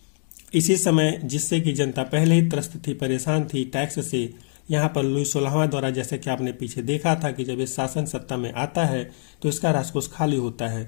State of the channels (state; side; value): silent; right; 63 dB below the other